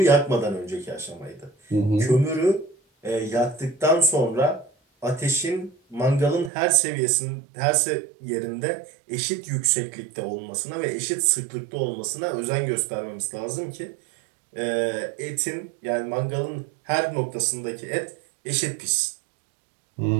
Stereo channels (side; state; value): left; drops out; at 6.5 s